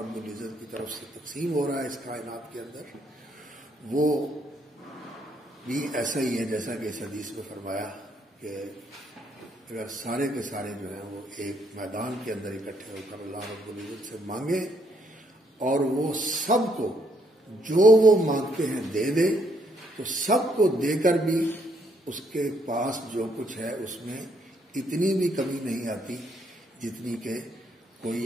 العزت کی طرف سے تقسیم ہو رہا ہے اس کائنات کے اندر، وہ بھی ایسا ہی ہے جیسا کہ اس حدیث میں فرمایا کہ اگر سارے کے سارے جو ہیں وہ ایک میدان کے اندر اکٹھے ہو کر اللہ رب العزت سے مانگیں اور وہ سب کو جو وہ مانگتے ہیں دے دے، تو سب کو دے کر بھی اس کے پاس جو کچھ ہے اس میں اتنی بھی کمی نہیں آتی جتنی کہ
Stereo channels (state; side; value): normal; both; correlation 0.72